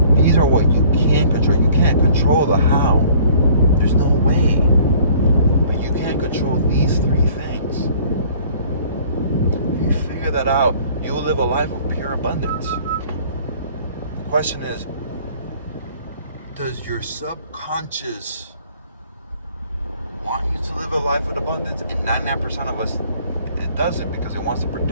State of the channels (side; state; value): both; inverted; correlation -0.54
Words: These are what you can control. You can't control the how. There's no way. But you can control these three things. If you figure that out, you will live a life of pure abundance. The question is, does your subconscious want you to live a life of abundance? And 99% of us, it doesn't, because it wants to